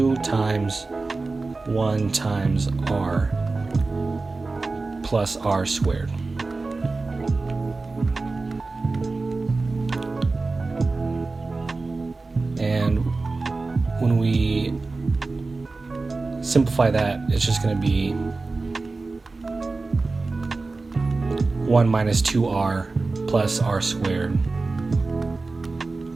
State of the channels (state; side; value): quieter; left; 3.7 dB